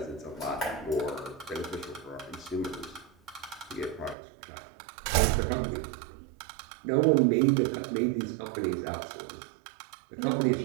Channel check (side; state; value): left; drops out; at 4.2 s